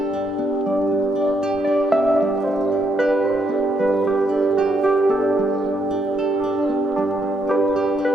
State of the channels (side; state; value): both; normal; correlation 0.75